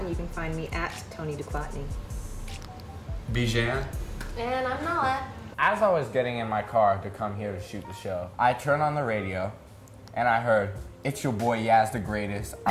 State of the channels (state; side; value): identical; both; correlation 1.00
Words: you can find me at Toni Duclottni. Bijan. And I'm Nala. As I was getting in my car to come here to shoot the show, I turned on the radio, and I heard, "It's your boy Yaz the Greatest.